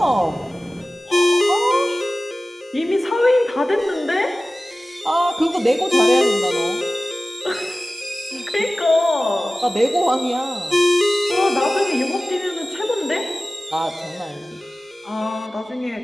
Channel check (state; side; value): normal; both; correlation 0.96